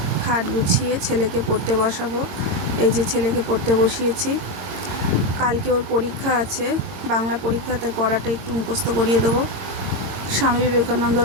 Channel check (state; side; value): late; left; 22 ms